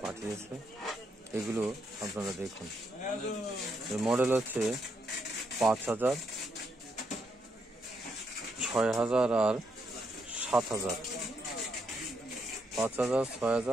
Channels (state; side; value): normal; both; correlation 0.78